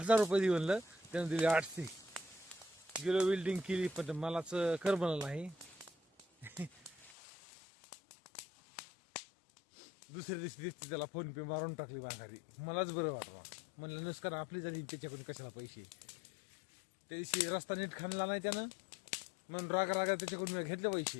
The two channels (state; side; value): drops out; right; at 7.2 s